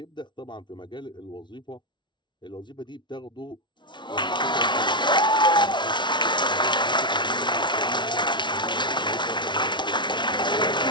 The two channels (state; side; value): late; right; 0.23 ms